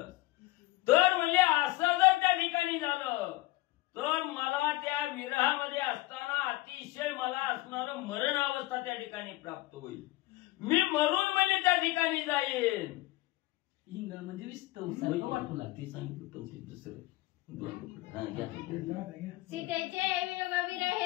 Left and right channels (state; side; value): quieter; right; 19.4 dB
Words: तर म्हणजे असं जर त्या ठिकाणी झालं तर मला त्या विरहामध्ये असताना अतिशय मला असणारं मरण अवस्था त्या ठिकाणी प्राप्त होईल. मी मरून म्हणजे त्या ठिकाणी जाईन. इंगळ म्हणजे विस्तव वाटू लागते. सांगितलं पण ते दुसरं सीतेचे वियोग